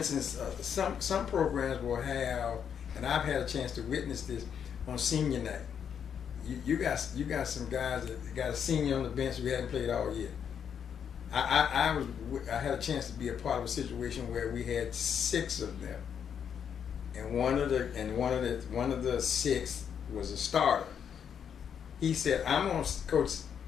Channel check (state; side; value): quieter; right; 7.9 dB